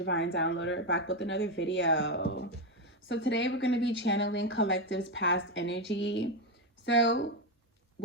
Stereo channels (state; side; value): normal; both; correlation 0.09